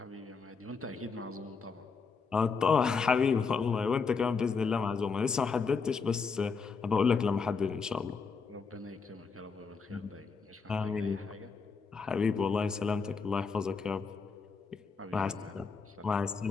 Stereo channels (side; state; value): right; quieter; 5.1 dB